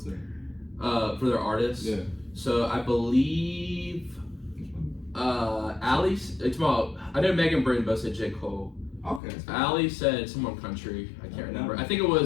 sing? for their artists? Yeah. So I believe Allie. It's about. I know Megan Britton both said J. Cole. Okay. Allie said someone country. I can't remember. I think it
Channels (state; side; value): drops out; right; at 9.2 s